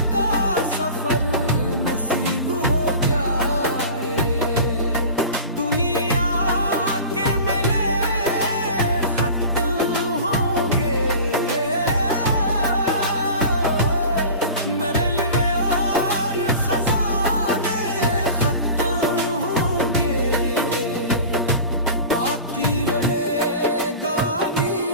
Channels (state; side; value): inverted; both; correlation -0.36